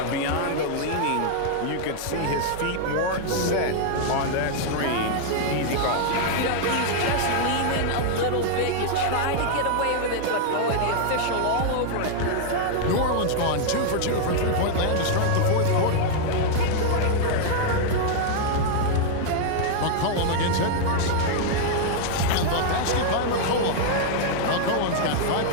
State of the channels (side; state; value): both; different; correlation -0.01